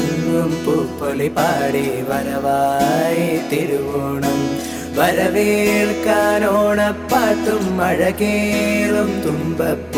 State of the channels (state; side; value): identical; both; correlation 1.00